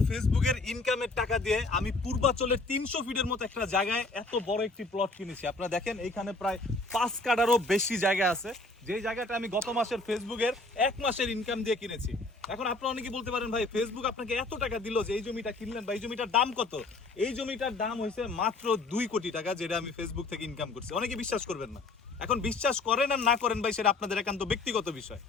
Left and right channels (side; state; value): right; quieter; 3.2 dB